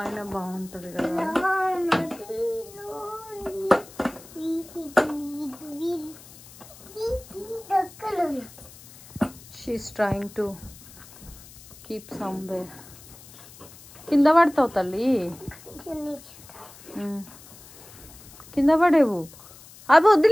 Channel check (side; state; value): left; noise; hiss, 20 dB below the sound